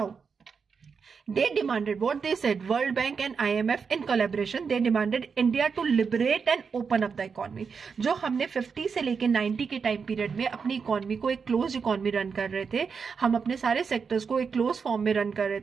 they demanded, what they said, World Bank and IMF in collaboration, they demanded India to liberate and open up the economy. जो हमने 50 से लेके 90 के time period में अपनी economy को एक close economy run कर रहे थे, हम अपने सारे सेक्टर्स को एक क्लोज फॉर्म में रन कर रहे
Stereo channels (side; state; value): left; quieter; 5.8 dB